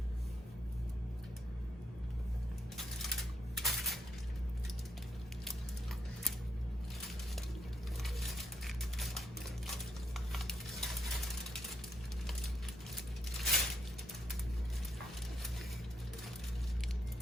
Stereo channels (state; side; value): normal; both; correlation 0.76